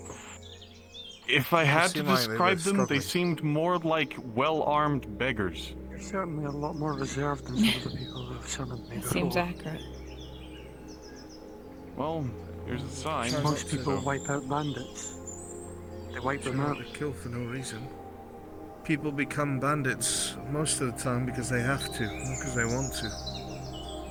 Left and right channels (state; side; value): identical; both; correlation 1.00